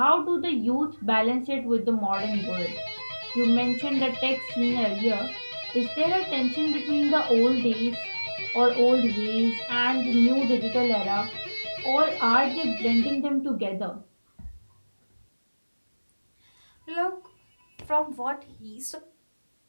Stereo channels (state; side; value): inverted; both; correlation -1.00